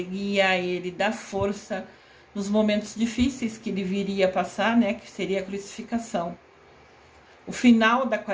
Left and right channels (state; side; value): identical; both; correlation 1.00